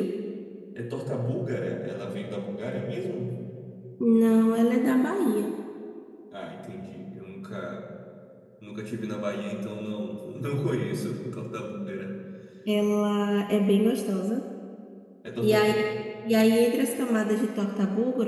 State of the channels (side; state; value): both; identical; correlation 1.00